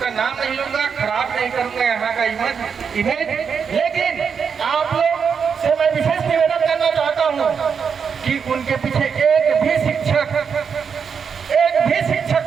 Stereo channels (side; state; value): left; quieter; 6.5 dB